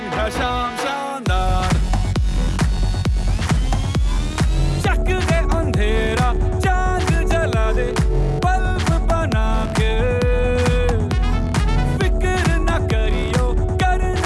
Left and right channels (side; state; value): both; identical; correlation 1.00